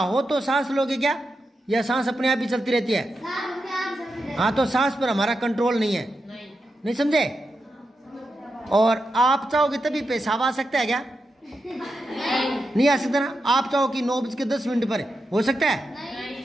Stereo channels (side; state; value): both; normal; correlation 0.87